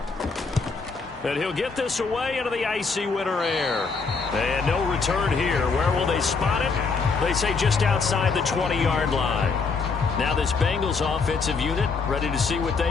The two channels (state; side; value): quieter; right; 4.7 dB